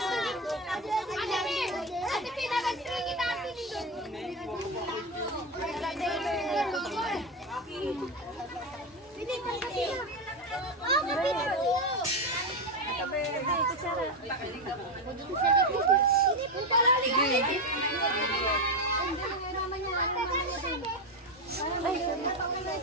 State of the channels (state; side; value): normal; both; correlation 0.12